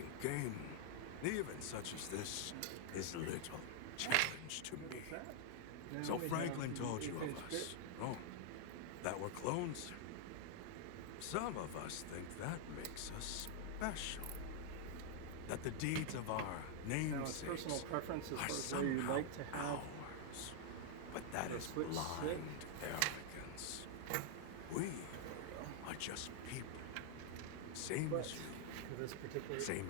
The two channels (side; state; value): both; different; correlation 0.00